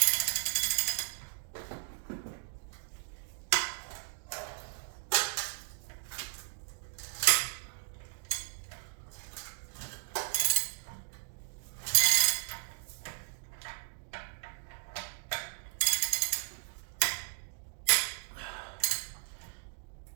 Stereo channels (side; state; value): left; silent; digital silence